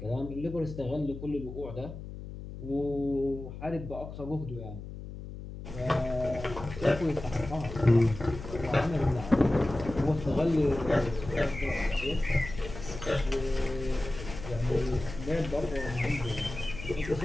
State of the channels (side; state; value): left; noise; hum, 11 dB below the sound